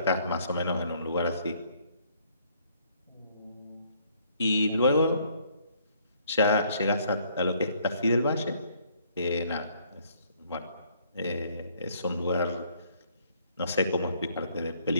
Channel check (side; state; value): both; inverted; correlation -0.64